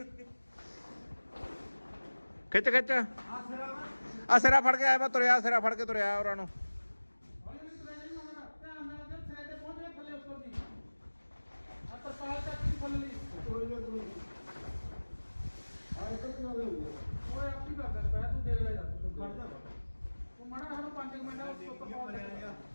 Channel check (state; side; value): inverted; both; correlation -1.00